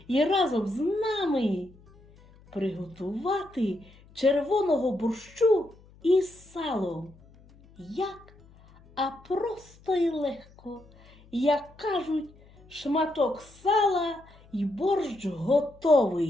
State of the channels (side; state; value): left; noise; hum, 26 dB below the sound